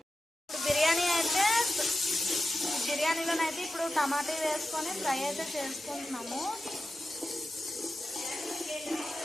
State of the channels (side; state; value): both; normal; correlation 0.92